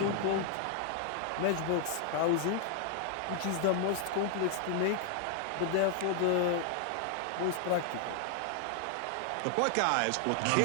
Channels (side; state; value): both; different; correlation 0.00